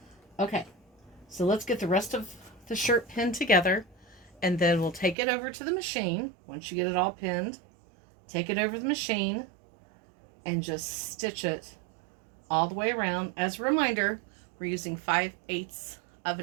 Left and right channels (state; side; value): drops out; left; at 5.2 s